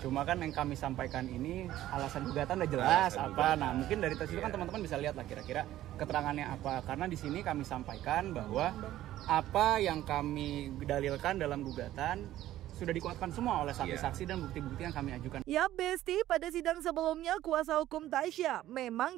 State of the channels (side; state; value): left; quieter; 13.8 dB